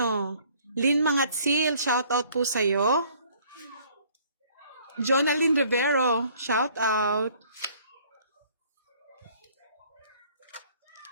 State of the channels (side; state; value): both; inverted; correlation -0.58